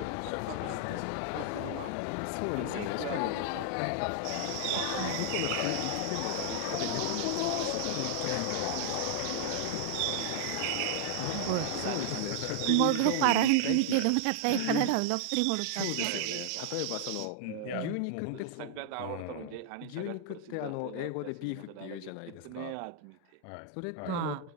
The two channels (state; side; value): different; both; correlation -0.01